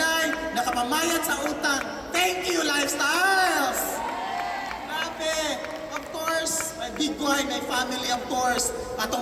nakapamayad sa utang. Thank you, lifestyles! Grabe! Of course, my big boy, my family, of course,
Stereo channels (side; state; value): both; identical; correlation 1.00